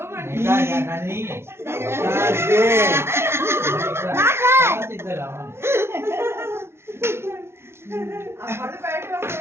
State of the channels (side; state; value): left; late; 0.12 ms